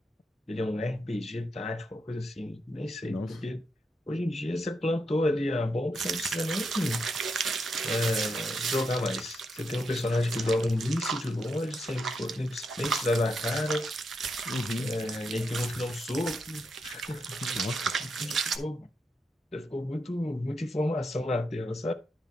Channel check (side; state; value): both; normal; correlation 0.82